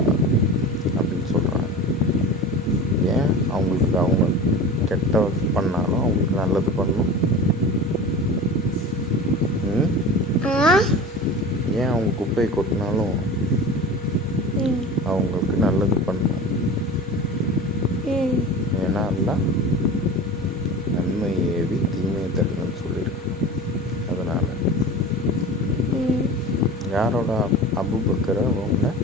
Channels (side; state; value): both; normal; correlation 0.34